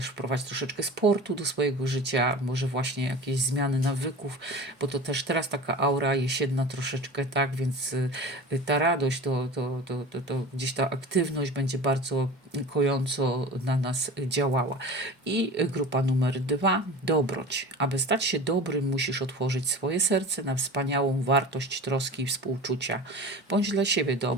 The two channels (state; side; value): normal; both; correlation 0.35